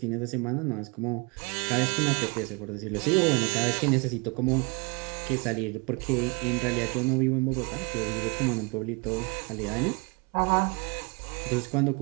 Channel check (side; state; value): left; quieter; 29.9 dB